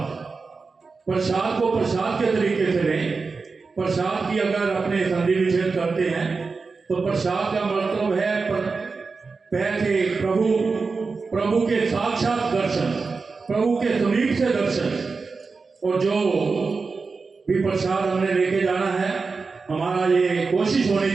प्रसाद को प्रसाद के तरीके से लें। प्रसाद की अगर अपने संधि विच्छेद करते हैं तो प्रसाद का मतलब है पैसे, प्रभु के साक्षात दर्शन, प्रभु के समीप से दर्शन। और जो भी प्रसाद हमने लेके जाना है, हमारा ये कोशिश होनी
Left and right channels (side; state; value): left; quieter; 4.4 dB